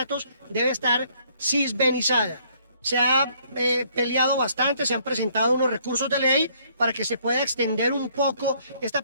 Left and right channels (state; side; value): inverted; both; correlation -0.65